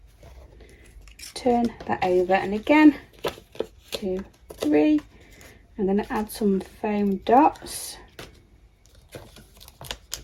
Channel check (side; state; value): both; identical; correlation 1.00